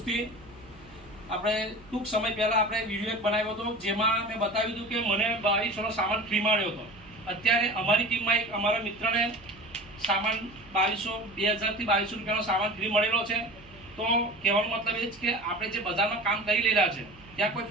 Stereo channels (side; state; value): right; noise; hum, 24 dB below the sound